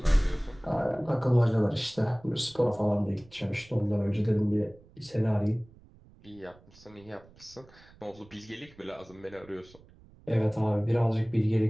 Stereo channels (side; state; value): right; noise; rumble, 25 dB below the sound